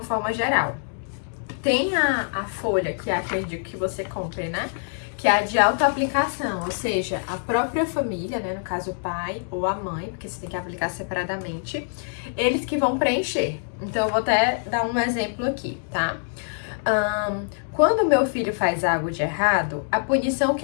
forma geral. Tem a folha, que é a que eu indico que você compre, né? Que é a de autoaplicação, ou seja, a própria família, né? No caso, o pai ou a mãe, porque você tem que aplicar separadamente, eles que vão preencher. Então, eu vou até dar um exemplo aqui, tá? Quando meu filho faz algo de errado, a punição que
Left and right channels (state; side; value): silent; right; digital silence